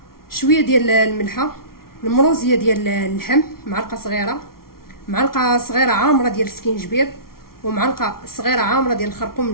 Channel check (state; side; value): late; right; 0.93 ms